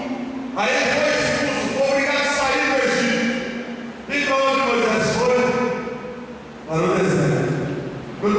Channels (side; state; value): both; identical; correlation 1.00